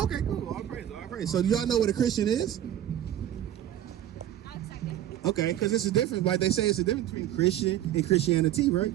Okay, cool. All praise, all praise. So do y'all know what a Christian is? Okay, because it's a difference. Like they say, it's a difference between Christian and Christianity, right?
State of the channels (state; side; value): quieter; left; 11.8 dB